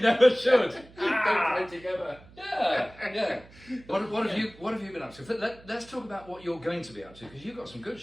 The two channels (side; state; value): right; noise; hum, 23 dB below the sound